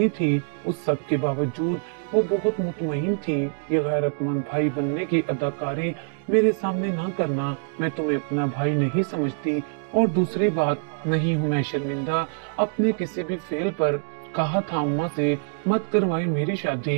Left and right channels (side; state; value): left; silent; digital silence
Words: थी। उस सब के बावजूद वो बहुत मुतमईन थी। ये गैरतमंद भाई बनने की अदाकारी मेरे सामने ना करना। मैं तुम्हें अपना भाई नहीं समझती और दूसरी बात, नहीं हूँ मैं शर्मिंदा अपने किसी भी फेल पर। कहा था अम्मा से मत करवाए मेरी